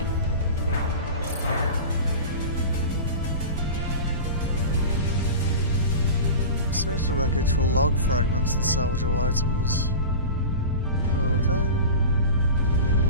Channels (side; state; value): both; inverted; correlation -0.31